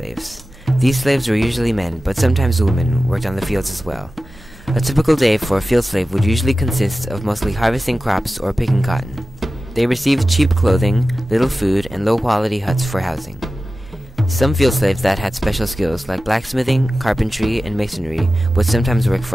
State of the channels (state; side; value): normal; both; correlation 0.95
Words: These slaves were usually men, but sometimes women worked on the fields as well. A typical day for a field slave would usually consist of mostly harvesting crops or picking cotton. They received cheap clothing, little food, and low-quality huts for housing. Some field slaves that had special skills like blacksmithing, carpentry, and masonry would sometimes work